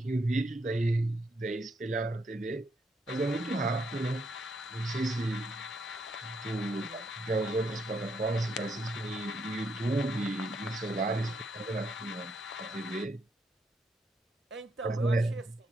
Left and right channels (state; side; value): normal; both; correlation 0.77